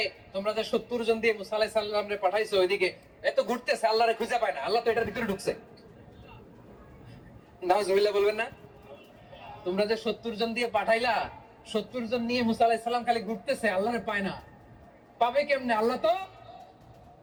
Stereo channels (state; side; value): identical; both; correlation 1.00